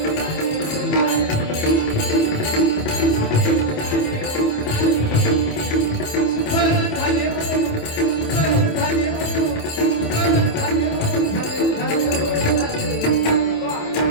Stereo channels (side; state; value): right; late; 27 ms